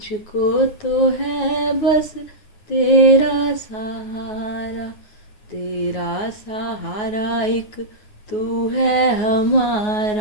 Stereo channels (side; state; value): right; late; 9.4 ms